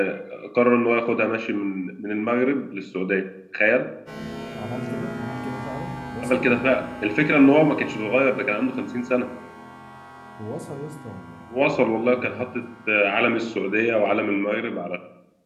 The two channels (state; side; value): identical; both; correlation 1.00